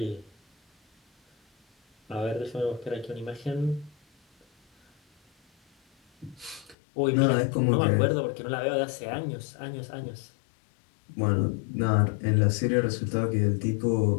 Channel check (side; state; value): right; drops out; at 6.8 s